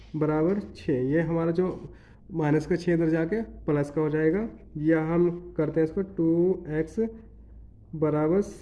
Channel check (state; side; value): identical; both; correlation 1.00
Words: बराबर 6, ये हमारा जो माइनस का 6 इधर जाके प्लस का हो जाएगा। या हम करते हैं इसको 2x बराबर